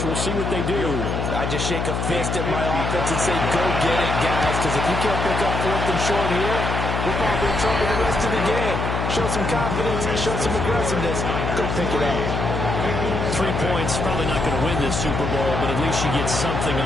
We'll see what they do. I just shake a fist at my offense and say, go get it, guys, because if you can't pick up 4th and short here, we're probably in trouble the rest of the game. Show some confidence, show some aggressiveness. Go pick it up. 3 points, probably not going to win this Super Bowl, but at least you get something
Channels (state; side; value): noise; left; hum, 1 dB below the sound